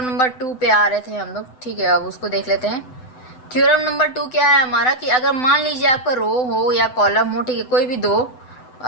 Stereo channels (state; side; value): late; right; 7.9 ms